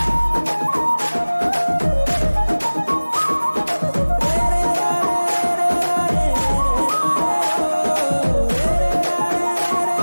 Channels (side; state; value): both; inverted; correlation -1.00